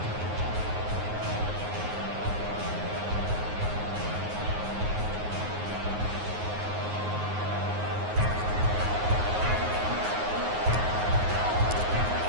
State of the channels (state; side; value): late; left; 9.5 ms